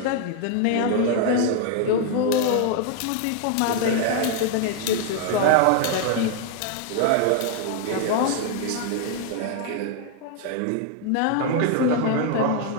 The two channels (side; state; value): both; different; correlation 0.00